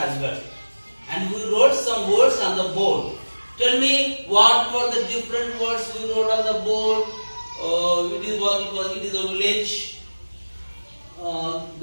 well. And we wrote some words on the board. Tell me what were the different words we wrote on the board. It is a village.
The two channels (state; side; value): inverted; both; correlation -1.00